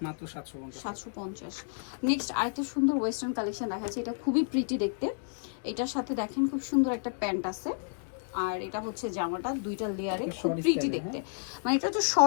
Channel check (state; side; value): silent; right; digital silence